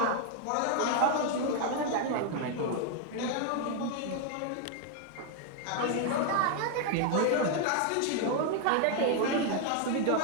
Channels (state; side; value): different; both; correlation 0.00